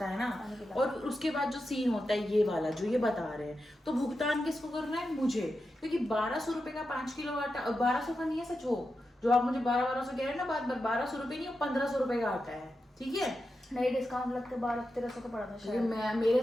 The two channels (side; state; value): both; normal; correlation 0.89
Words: है ना, और उसके बाद जो सीन होता है ये वाला जो ये बता रहे हैं, तो भुगतान किसको करना है, मुझे, क्योंकि 1200 रुपए का 5 किलो आटा, 1200 का नहीं है सच, हो जो आप मुझे 1200 कह रहे हैं ना, बात 1200 रुपए नहीं, 1500 रुपए का आटा है, ठीक है। नहीं डिस्काउंट लग के 1200-1300 का पड़ा था शायद, मैं मेरे